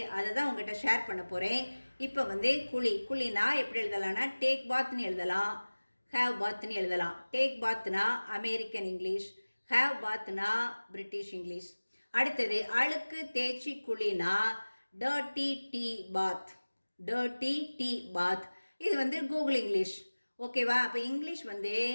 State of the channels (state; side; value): inverted; both; correlation -1.00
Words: அதை தான் உங்கள்கிட்ட ஷேர் பண்ண போகிறேன். இப்போ குழினா எப்படி எழுதலாம்னா டேக் பாத்னு எழுதலாம், ஹேவ் பாத்னு எழுதலாம். டேக் பாத்னா அமெரிக்கன் இங்கிலீஷ், ஹேவ் பாத்னா பிரிட்டிஷ் இங்கிலீஷ். அடுத்தது அழுக்கு தேய்ச்சி குழினா dirty tea bath, dirty tea bath. இது கூகுள் இங்கிலீஷ். ஓகேவா? அப்போ இங்கிலீஷ்